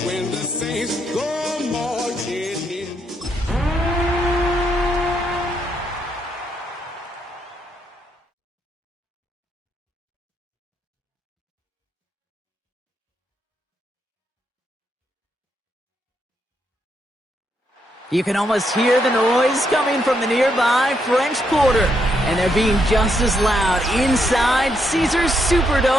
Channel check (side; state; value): both; normal; correlation 0.77